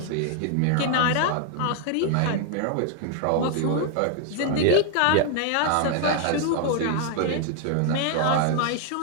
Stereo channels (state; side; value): different; both; correlation 0.00